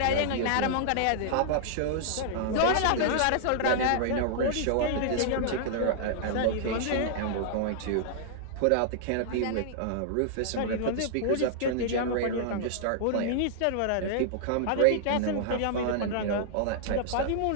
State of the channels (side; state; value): both; different; correlation -0.01